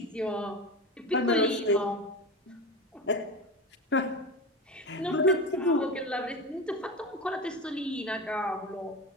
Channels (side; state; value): both; normal; correlation 0.25